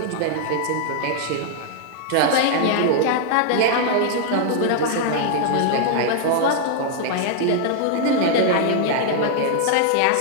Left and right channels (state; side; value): different; both; correlation -0.01